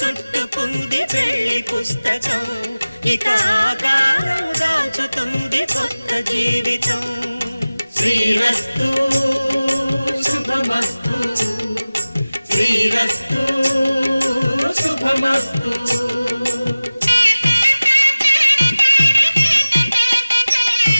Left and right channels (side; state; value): both; inverted; correlation -0.97